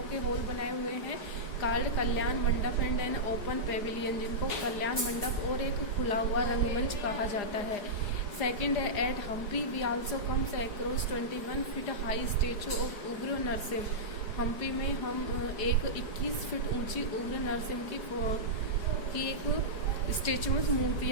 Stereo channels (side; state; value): right; late; 4.8 ms